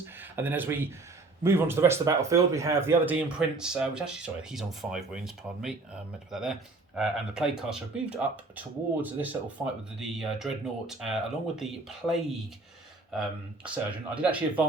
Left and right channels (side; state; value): left; quieter; 3.4 dB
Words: And then as we move on to the rest of the battlefield, we have the other Demon Prince, which actually, sorry, he's on 5 wounds, pardon me, I meant to put that there. And the Plague Caster have moved up towards this little fight with the Dreadnought, along with the Plague Surgeon. I did actually